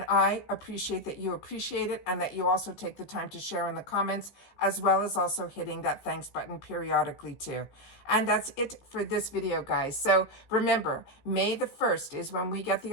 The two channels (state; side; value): late; right; 15 ms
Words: I appreciate that you appreciate it and that you also take the time to share in the comments, as well as also hitting that thanks button periodically too. And that's it for this video, guys. So remember, May the 1st is when we get